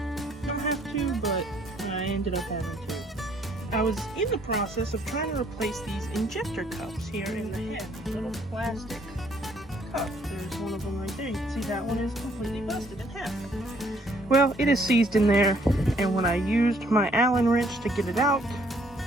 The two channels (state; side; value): normal; both; correlation 0.65